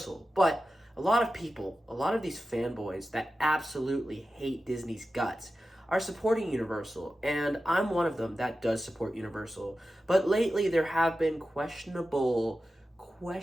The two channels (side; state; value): both; normal; correlation 0.93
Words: but a lot of these fanboys that absolutely hate Disney's guts are supporting Universal, and I'm one of them that does support Universal. But lately there have been questionable